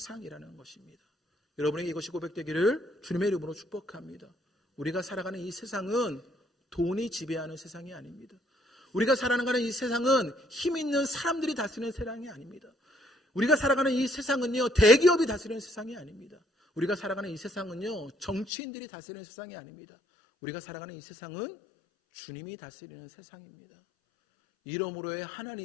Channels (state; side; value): drops out; right; at 18.5 s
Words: 것입니다. 여러분에게 이것이 고백되기를 주님의 이름으로 축복합니다. 우리가 살아가는 이 세상은 돈이 지배하는 세상이 아닙니다. 우리가 살아가는 이 세상은 힘 있는 사람들이 다스리는 세상이 아닙니다. 우리가 살아가는 이 세상은요 대기업이 다스리는 세상이 아닙니다. 우리가 살아가는 이 세상은요 정치인들이 다스리는 세상이 아닙니다. 우리가 살아가는 이 세상은 주님이 다스리는 세상입니다. 이러므로의